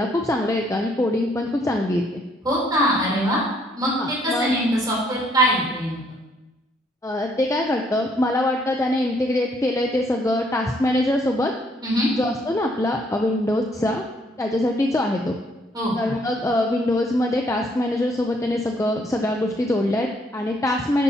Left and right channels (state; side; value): normal; both; correlation 0.67